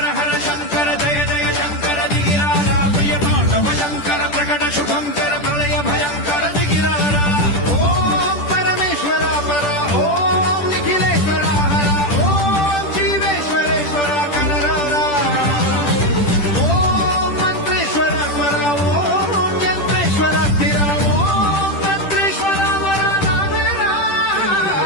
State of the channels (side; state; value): right; late; 10 ms